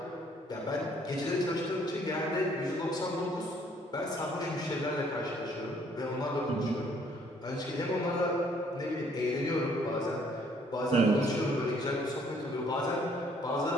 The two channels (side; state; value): both; normal; correlation 0.63